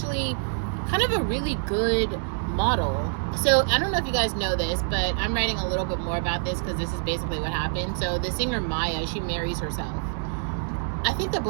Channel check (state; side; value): silent; left; digital silence